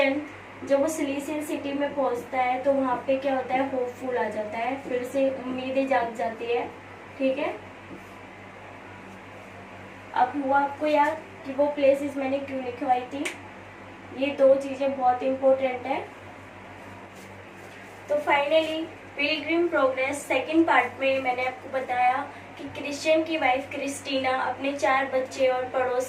जब वो सिलिसियल सिटी में पहुंचता है, तो वहाँ पे क्या होता है, होपफुल आ जाता है, फिर से उम्मीदें जाग जाती है। ठीक है। अब हुआ आपको याद कि वो प्लेसेस मैंने क्यों लिखवाई थी। ये 2 चीजें बहुत इंपॉर्टेंट है। तो finally Pilgrim progress second part में मैंने आपको बताया कि क्रिश्चियन की वाइफ क्रिस्टीना अपने 4 बच्चे और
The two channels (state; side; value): identical; both; correlation 1.00